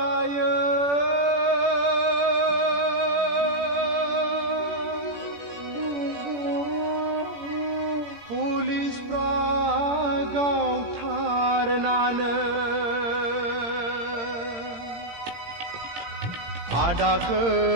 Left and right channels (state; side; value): late; left; 17 ms